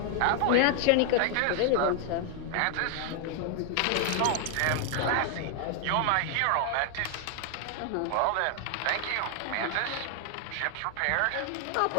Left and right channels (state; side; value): different; both; correlation 0.00